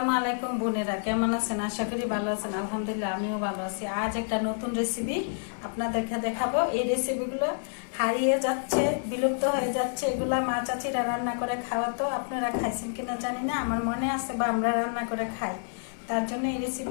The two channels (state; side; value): silent; right; 59 dB below the other